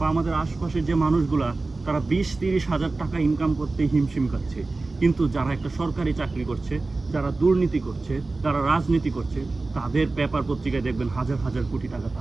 আমাদের আশপাশের যে মানুষগুলা, তারা 20-30 হাজার টাকা ইনকাম করতে হিমশিম খাচ্ছে। কিন্তু যারা একটা সরকারি চাকরি করছে, যারা দুর্নীতি করছে, যারা রাজনীতি করছে, তাদের পেপার পত্রিকায় দেখবেন হাজার হাজার কোটি টাকা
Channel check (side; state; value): left; quieter; 3.4 dB